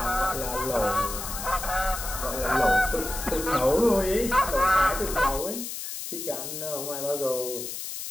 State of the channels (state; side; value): noise; left; hiss, 7 dB below the sound